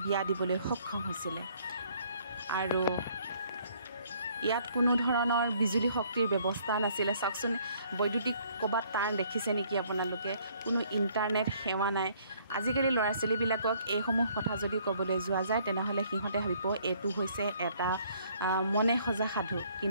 বিয়া দিবলৈ সক্ষম হৈছিলে আৰু ইয়াত কোনো ধৰণৰ বিজুলী শক্তিৰ ব্যৱস্থা নাছিলে চাওকচোন বৈদ্যুতিক ক'ৰবাত তাঁৰ দেখিছে নেকি আপোনালোকে কোনো ইণ্টাৰনেট সেৱা নাই আজিকালি ল'ৰা ছোৱালীবিলাকক এইসমূহ কথা যদি ক'বলৈ যোৱা যায় তেনেহ'লে সিহঁতে ভাবিব এইটো হৈছে এটা মনে সজা সাধু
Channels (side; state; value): both; inverted; correlation -0.62